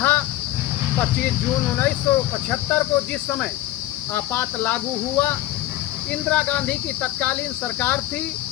25 जून 1975 को जिस समय आपात लागू हुआ, इंदिरा गांधी की तत्कालीन सरकार थी।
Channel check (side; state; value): right; quieter; 15.0 dB